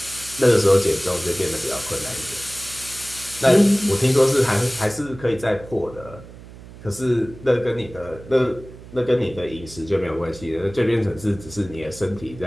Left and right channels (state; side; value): noise; right; hum, 17 dB below the sound